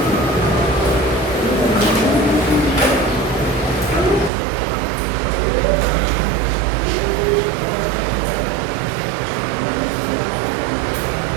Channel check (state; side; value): drops out; left; at 4.3 s